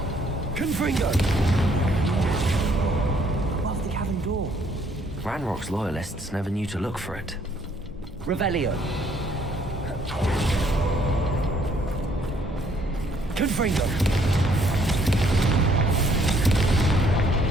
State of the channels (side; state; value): both; normal; correlation 0.65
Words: Confringo. Above the cavern door. Ranrock's loyalists never knew to look for it. Revelio. Confringo.